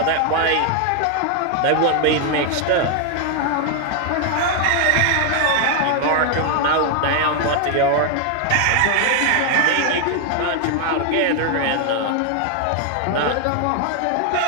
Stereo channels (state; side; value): different; both; correlation 0.00